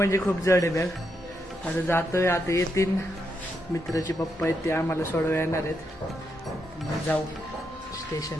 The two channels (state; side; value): normal; both; correlation 0.82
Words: खूप जड आहे बॅग. आता जातोय, आता येतील मित्राचे पप्पा आहेत, ते आम्हाला सोडवायला येणार आहेत. मग जाऊ